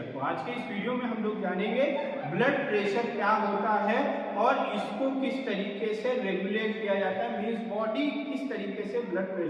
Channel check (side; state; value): both; identical; correlation 1.00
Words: तो आज के इस वीडियो में हम लोग जानेंगे ब्लड प्रेशर क्या होता है और इसको किस तरीके से रेगुलेट किया जाता है, मींस बॉडी किस तरीके से ब्लड